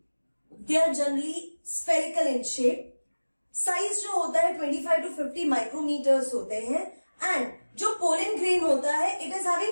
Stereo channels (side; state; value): both; inverted; correlation -1.00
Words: are generally spherical in shape, size जो होता है 25 to 50 माइक्रोमीटर्स होते हैं। एंड जो पोलन ग्रेन होता है it is